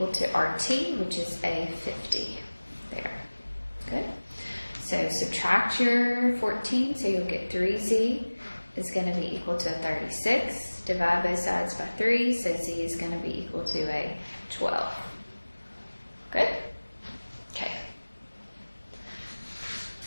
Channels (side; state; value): both; inverted; correlation -1.00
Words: to RT, which is a 50 there. Good. So subtract your 14, so you'll get 3z is going to be equal to a 36. Divide both sides by 3, so z is going to be equal to a 12. Good? Okay.